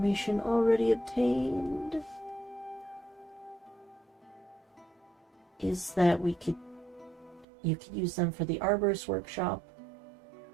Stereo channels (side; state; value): left; drops out; at 7.5 s